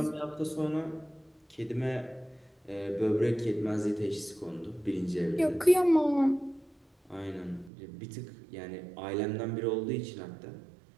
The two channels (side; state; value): left; drops out; at 7.7 s